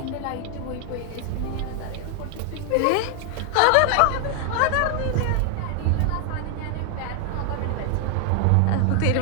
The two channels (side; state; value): both; different; correlation 0.00